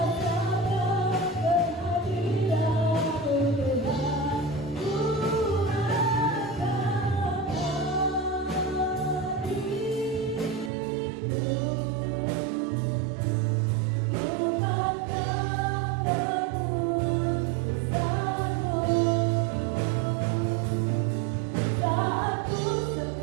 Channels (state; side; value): drops out; left; at 10.7 s